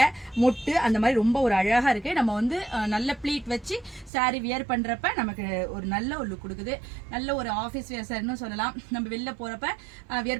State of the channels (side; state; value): left; drops out; at 4.1 s